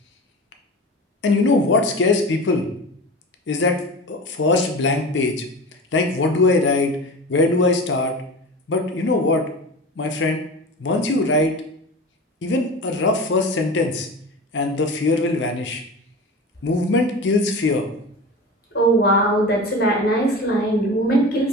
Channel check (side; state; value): both; normal; correlation 0.32